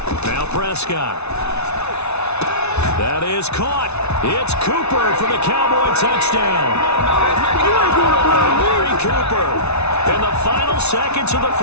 Now Prescott. That is caught. It's Cooper for the Cowboy touchdown. Amari Cooper in the final seconds of the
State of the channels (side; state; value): right; late; 0.81 ms